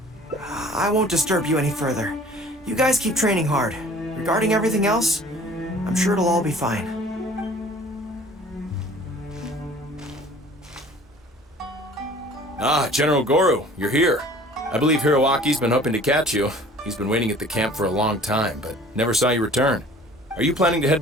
I won't disturb you any further. You guys keep training hard. Regarding everything else, I'm sure it'll all be fine. Ah, General Gorou, you're here. I believe Hiroaki's been hoping to catch you. He's been waiting at the camp for a long time, but never saw you return. Are you planning to head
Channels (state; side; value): normal; both; correlation 0.49